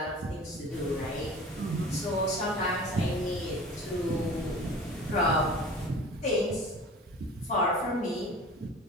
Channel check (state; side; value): normal; both; correlation 0.41